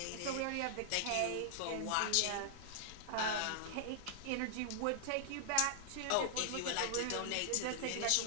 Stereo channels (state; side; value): different; both; correlation -0.01